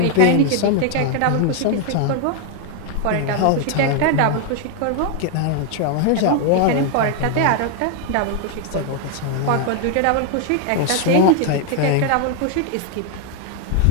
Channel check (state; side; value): different; both; correlation 0.00